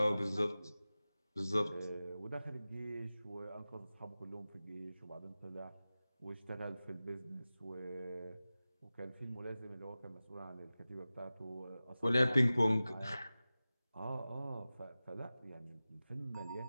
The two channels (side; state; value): both; inverted; correlation -0.96